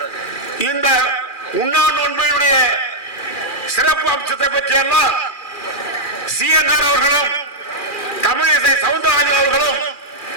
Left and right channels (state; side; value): late; right; 2.4 ms